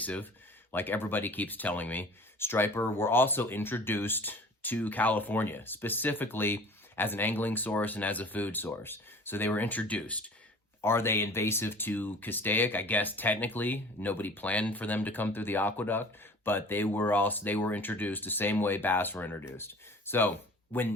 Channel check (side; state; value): both; normal; correlation 0.44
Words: like everybody keeps telling me. Striper were also introduced to California, specifically as an angling source and as a food source. So they were introduced. Are they invasive to Keitech? I guess technically nobody planned for them to come through the aqueduct, but they were introduced the same way bass were introduced. So